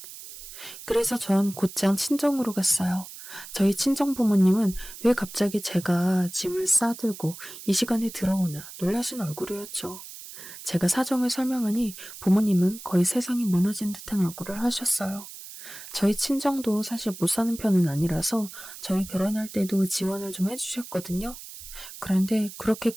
그래서 전 곧장 친정으로 갔어요. 저희 친정 부모님은 왜 갑자기 제가 짐을 싸들고 이 시간에 들어오나 놀라신 얼굴이었죠. 제가 사정을 설명하니 부모님은 거의 세상이 무너진 듯한 얼굴을 하셨어요. 저희 친정도 사실 못 사는 편은 아니라서 저희 결혼할 때도 지원을 좀 해주셨거든요. 그런데 그렇게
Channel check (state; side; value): noise; right; hiss, 14 dB below the sound